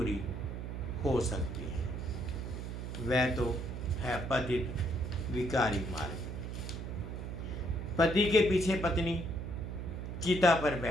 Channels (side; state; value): right; noise; hum, 6 dB below the sound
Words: हो सकती हैं। वह तो है पतित विकारी मार्ग। पति के पीछे पत्नी चिता पर